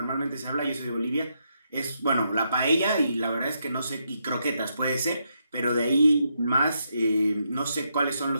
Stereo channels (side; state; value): both; inverted; correlation -0.80